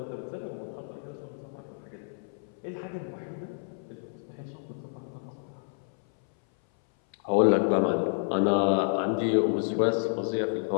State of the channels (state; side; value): silent; right; 58 dB below the other